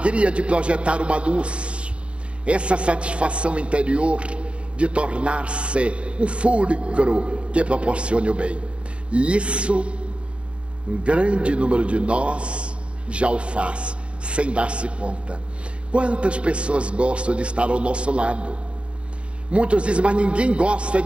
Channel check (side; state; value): left; late; 0.059 ms